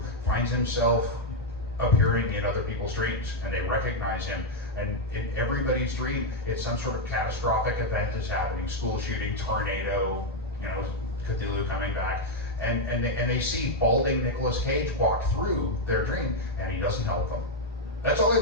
finds himself appearing in other people's dreams, and they recognize him. And in everybody's dream, it's some sort of catastrophic event is happening: school shooting, tornado, Cthulhu coming back, and they see balding Nicolas Cage walk through their dream, and he doesn't help them. That's all they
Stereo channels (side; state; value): both; normal; correlation 0.00